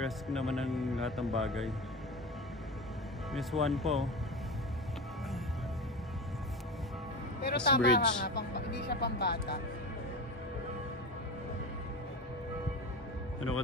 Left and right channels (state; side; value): normal; both; correlation 0.26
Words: naman ng lahat ng bagay. Miss One po. Pero This tama bridge. ka nga, hindi siya pambata. Ano ka